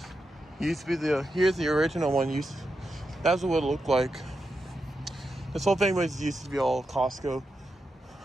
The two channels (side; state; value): both; normal; correlation 0.87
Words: Used to be here's the original one. That's what it looked like. This whole thing used to be all Costco.